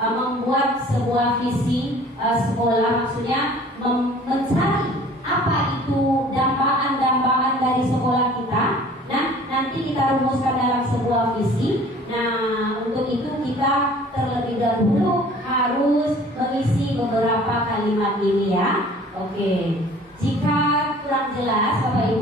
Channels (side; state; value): both; normal; correlation 0.49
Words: sebuah visi sekolah, maksudnya mencari apa itu dambaan-dambaan dari sekolah kita. Nah, nanti kita rumuskan dalam sebuah visi. Nah, untuk itu kita terlebih dahulu harus mengisi beberapa kalimat ini ya. Oke. Jika kurang jelas Bapak